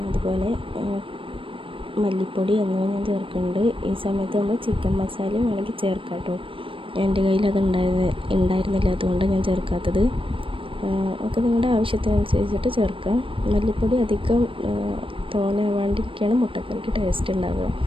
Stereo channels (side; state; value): left; late; 0.25 ms